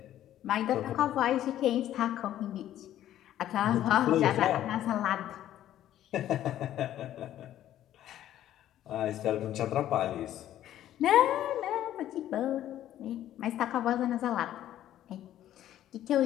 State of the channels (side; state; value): right; quieter; 12.3 dB